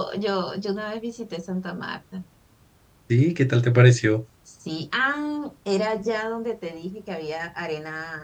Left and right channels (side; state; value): both; identical; correlation 1.00